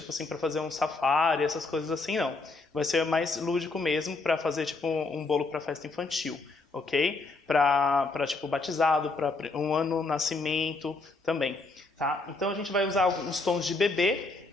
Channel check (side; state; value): right; quieter; 3.5 dB